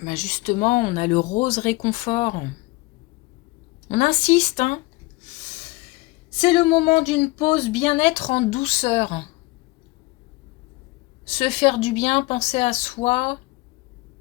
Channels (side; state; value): right; quieter; 22.2 dB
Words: bah justement, on a le rose réconfort. On insiste, hein. C'est le moment d'une pause bien-être en douceur. Se faire du bien, penser à soi.